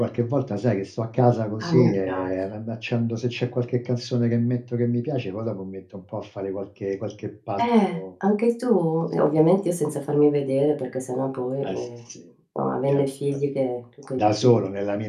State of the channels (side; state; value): both; identical; correlation 1.00